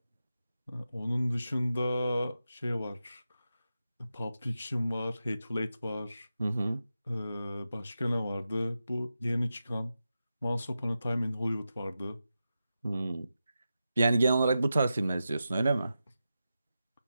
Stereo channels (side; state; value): both; inverted; correlation -0.91